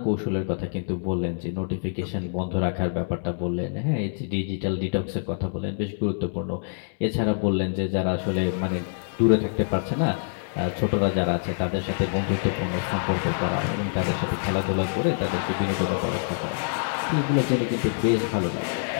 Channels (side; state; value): right; silent; 61 dB below the other